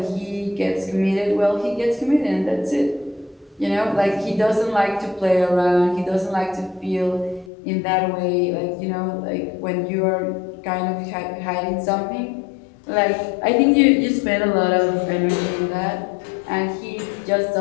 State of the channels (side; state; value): right; drops out; at 7.5 s